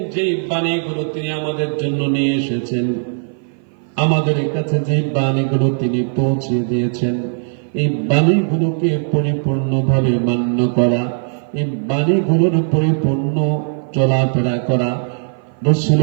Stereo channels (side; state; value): left; silent; 57 dB below the other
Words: যে বাণীগুলো তিনি আমাদের জন্য নিয়ে এসেছেন, আমাদের কাছে যে বাণীগুলো তিনি পৌঁছে দিয়েছেন, এই বাণীগুলোকে পরিপূর্ণভাবে মান্য করা, এই বাণীগুলোর পরিপূর্ণ চলাফেরা করা,